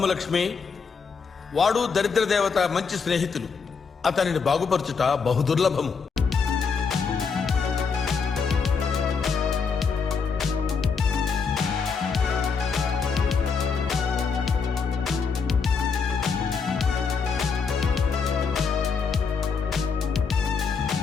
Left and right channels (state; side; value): quieter; right; 5.5 dB